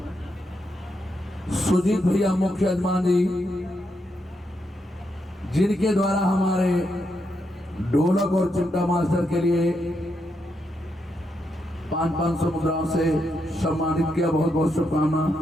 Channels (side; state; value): both; normal; correlation 0.81